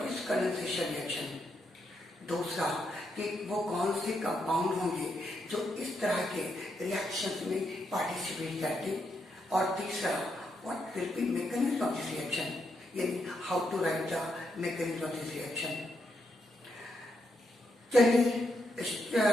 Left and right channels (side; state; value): both; normal; correlation 0.80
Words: इज कंडेंसेशन रिएक्शन, दूसरा कि वो कौन से कंपाउंड होंगे जो इस तरह के रिएक्शन में पार्टिसिपेट करते, और तीसरा what will be mechanism of this reaction, यानी how to write the mechanism of this reaction। चलिए